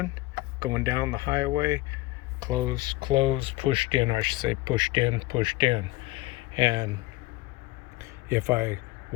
going down the highway, close, close, pushed in, I should say pushed in, pushed in. And if I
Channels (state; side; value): quieter; right; 19.1 dB